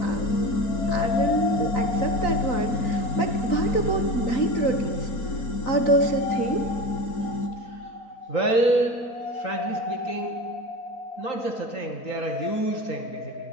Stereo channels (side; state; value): right; late; 4.4 ms